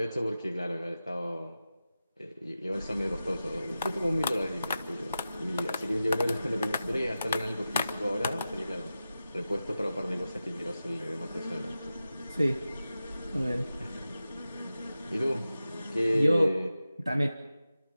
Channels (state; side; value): inverted; both; correlation -0.93